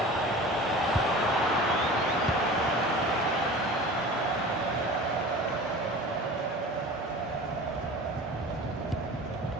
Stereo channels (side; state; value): both; normal; correlation 0.38